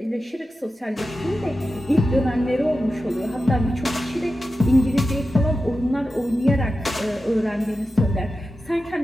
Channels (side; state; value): both; normal; correlation 0.92